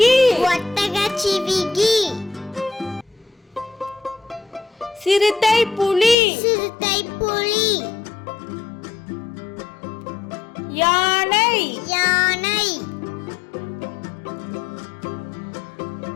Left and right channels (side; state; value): right; drops out; at 6.2 s